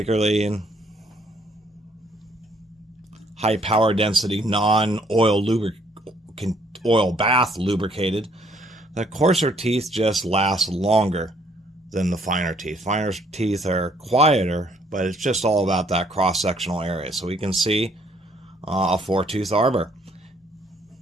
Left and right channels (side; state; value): both; normal; correlation 0.65